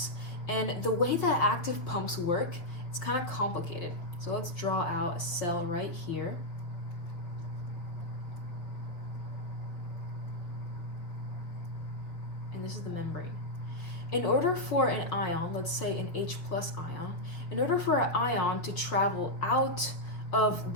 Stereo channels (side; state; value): right; late; 5.7 ms